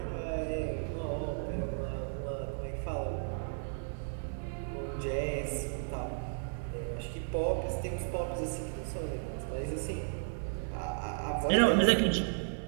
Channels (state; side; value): silent; left; digital silence